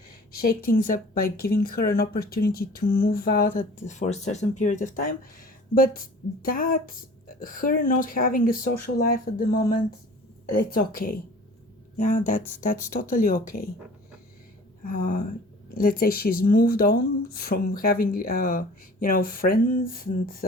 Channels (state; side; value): normal; both; correlation 0.45